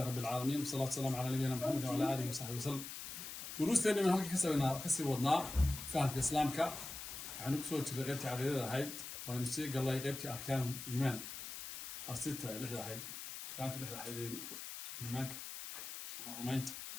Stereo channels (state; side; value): noise; left; hiss, 8 dB below the sound